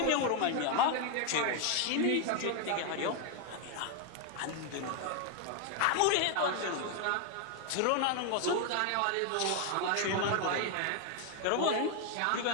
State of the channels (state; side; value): different; both; correlation 0.01